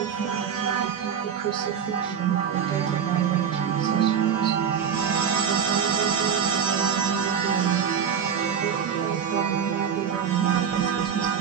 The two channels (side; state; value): left; quieter; 7.7 dB